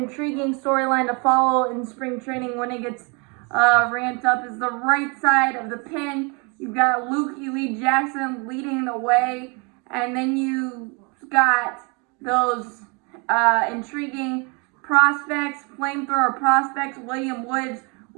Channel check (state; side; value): quieter; left; 31.9 dB